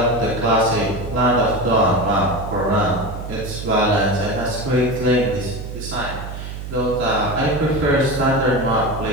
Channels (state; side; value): noise; right; hum, 9 dB below the sound